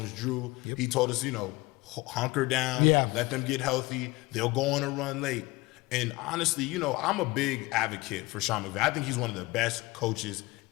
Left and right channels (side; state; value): right; quieter; 21.7 dB